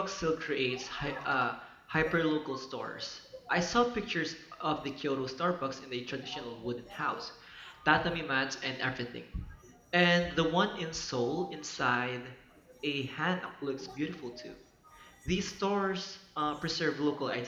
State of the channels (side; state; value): both; identical; correlation 1.00